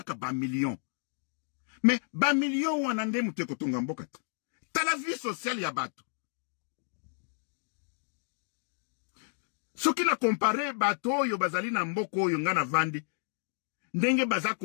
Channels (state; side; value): silent; right; digital silence